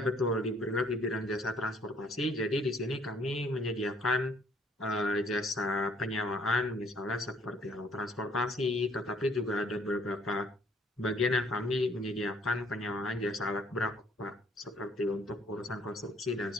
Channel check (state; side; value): normal; both; correlation 0.62